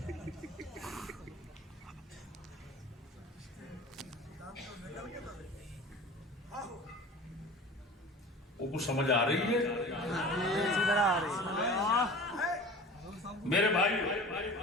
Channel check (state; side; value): normal; both; correlation 0.38